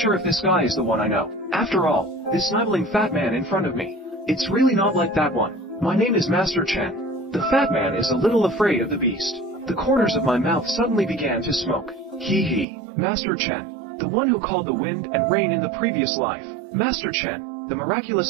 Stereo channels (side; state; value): left; drops out; at 12.7 s